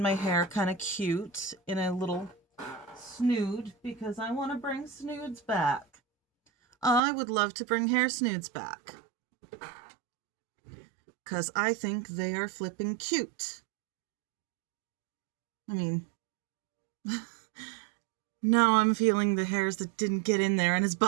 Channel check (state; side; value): drops out; left; at 7.0 s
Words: hair kind of cute in a little snood because I want to bring snoods back. I would love to bring hair snoods back. Because I think they are flipping cute. I mean, now I'm feeling the hairs that didn't get in there and it's